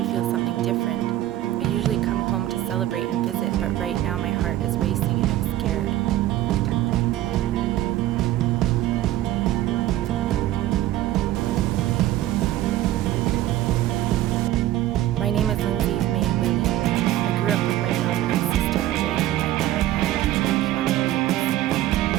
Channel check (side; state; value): left; quieter; 14.2 dB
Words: feel something different. I usually come home to celebrate and visit, but right now my heart is racing and I'm scared. My name is Lindsay May Willie. I grew up with my mom and sister away from my dad and my roots.